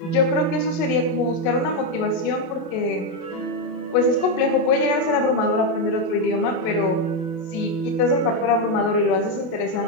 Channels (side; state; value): right; late; 27 ms